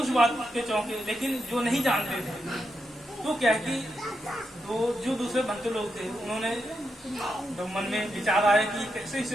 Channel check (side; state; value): both; normal; correlation 0.85